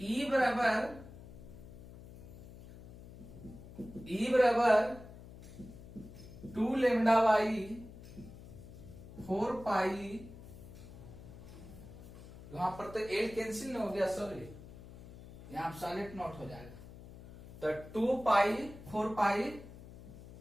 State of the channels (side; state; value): left; noise; hum, 16 dB below the sound